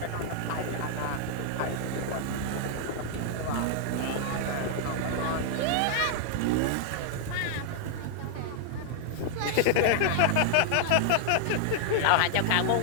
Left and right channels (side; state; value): both; different; correlation -0.01